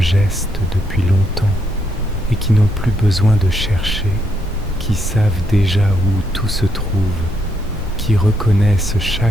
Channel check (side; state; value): both; normal; correlation 0.77